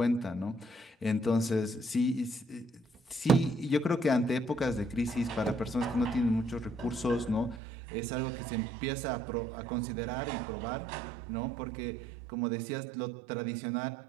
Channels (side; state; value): left; drops out; at 7.6 s